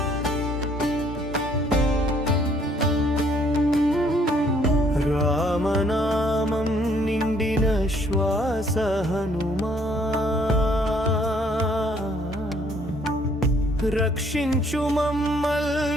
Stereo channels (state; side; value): normal; both; correlation 0.64